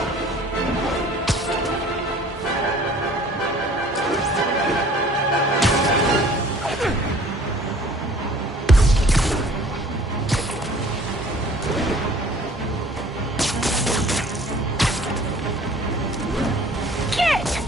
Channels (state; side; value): normal; both; correlation 0.51